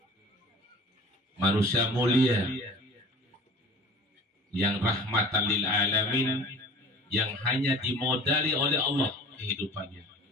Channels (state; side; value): normal; both; correlation 0.42